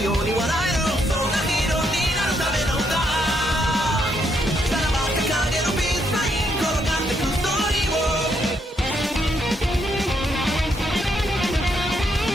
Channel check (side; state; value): both; normal; correlation 0.75